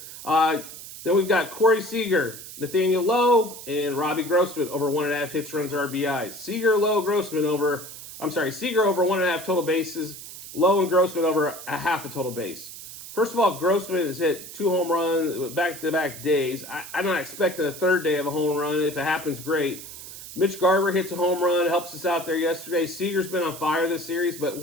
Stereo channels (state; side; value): noise; right; hiss, 13 dB below the sound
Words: Then we've got Corey Seager, Nathaniel Lowe, and Robbie Grossman over 1.5 hits, runs, RBIs. Seager, Lowe, Grossman over, Seager over 1.5 total bases, Lowe and Grossman over a half a total base. First of all, Grossman has hit 2 home runs back-to-back days. I'm not expecting a third day of a home run. If it happens, great. Mitch Garver hits a home run, helps us out there yesterday. Seager's been on fire this series, but